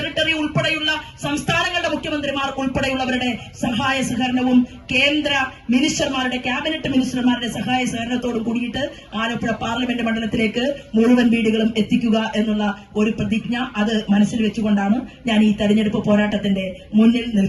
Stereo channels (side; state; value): both; identical; correlation 1.00